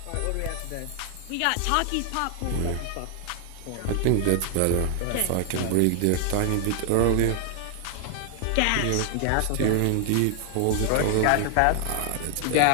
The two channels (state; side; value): different; both; correlation 0.00